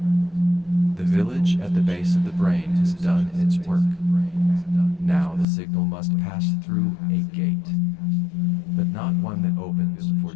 The village at the base of the brain has done its work. Now the signal must pass through a gate, but not one that opens for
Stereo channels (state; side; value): drops out; right; at 5.5 s